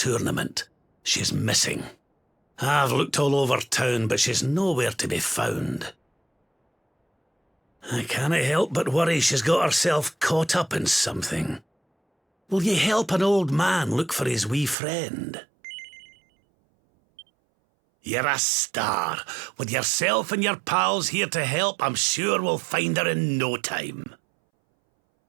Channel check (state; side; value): drops out; left; at 14.8 s